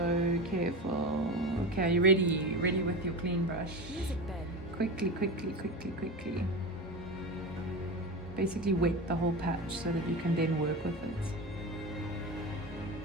careful. Okay, are you ready? Ready with your clean brush? Music bed. Quickly. Basically wet the whole patch so that you can then work with it.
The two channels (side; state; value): both; normal; correlation 0.24